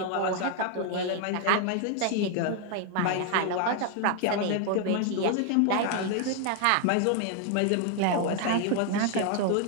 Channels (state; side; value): different; both; correlation 0.00